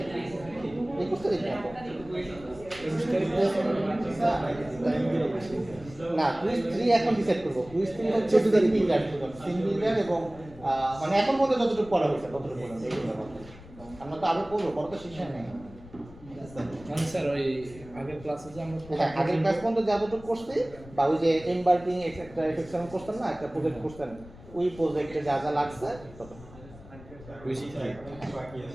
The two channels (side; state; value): left; noise; rumble, 19 dB below the sound